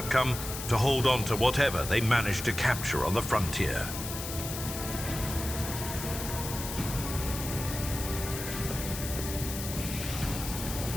to hold on to whatever they manage to capture on the frontier.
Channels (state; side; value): noise; left; hiss, 7 dB below the sound